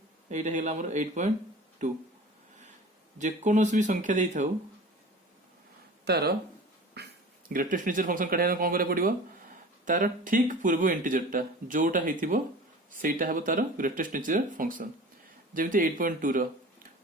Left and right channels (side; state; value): both; normal; correlation 0.39